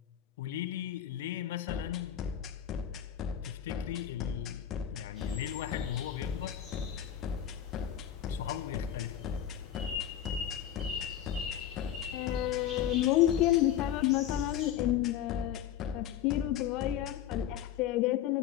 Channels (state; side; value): quieter; right; 10.6 dB